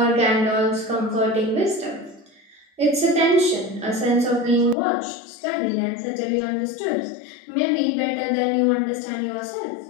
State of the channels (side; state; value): right; drops out; at 4.8 s